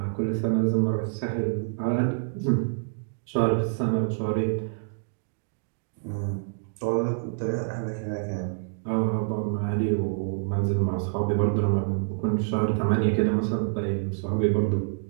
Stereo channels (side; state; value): left; silent; digital silence